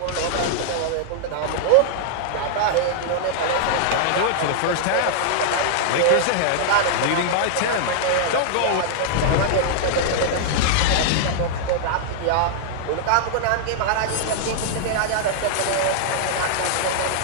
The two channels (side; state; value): both; different; correlation -0.01